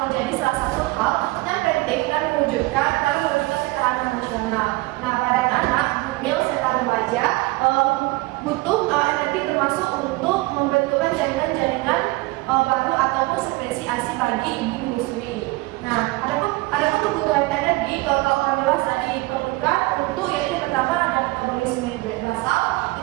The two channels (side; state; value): left; quieter; 22.1 dB